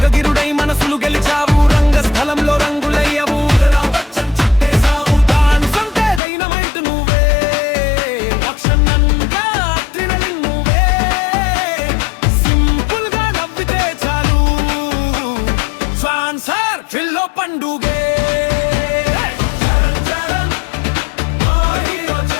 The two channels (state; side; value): drops out; right; at 6.2 s